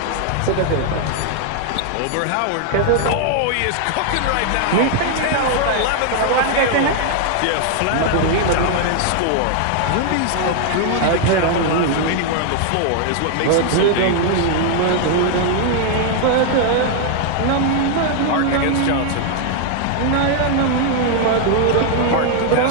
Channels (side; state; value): both; different; correlation 0.00